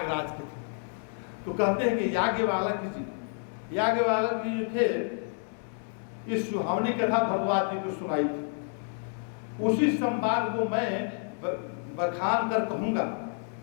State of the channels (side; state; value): right; silent; 58 dB below the other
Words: के थे। तो कहते हैं कि याज्ञवल्क्य जी जो थे, इस सुहावनी कथा भरद्वाज जी को सुनाई थी। उसी संवाद को मैं बखान कर कहूँगा,